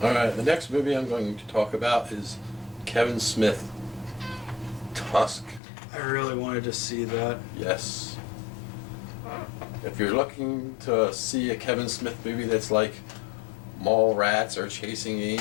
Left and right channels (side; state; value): right; drops out; at 5.6 s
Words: All right, the next movie I'm going to talk about is Kevin Smith, Tusk. I really wanted to see that. Yes. If you're looking to see a Kevin Smith movie that's like Mallrats or Chasing